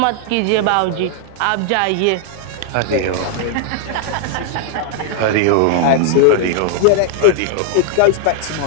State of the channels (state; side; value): different; both; correlation 0.00